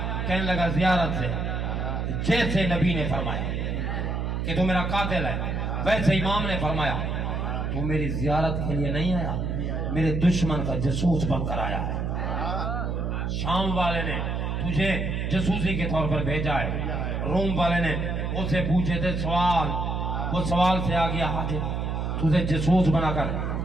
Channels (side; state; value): right; noise; hum, 1 dB below the sound